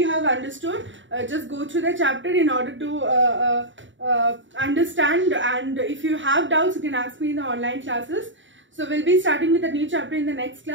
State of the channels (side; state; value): left; late; 0.55 ms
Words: have understood. Just go through the chapter in order to understand, and if you have doubts you can ask me in the online classes. So we'll be starting with a new chapter in the next